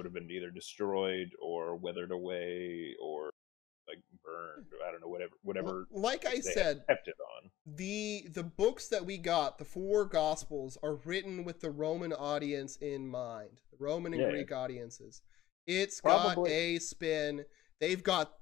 have been either destroyed or weathered away or like burned. I don't know, whatever. Like I they said, kept it on. the books that we got, the 4 Gospels, are written with the Roman audience in mind, the Roman and Yeah. Greek audiences. It's got Probably. a spin. They've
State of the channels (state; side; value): quieter; right; 14.9 dB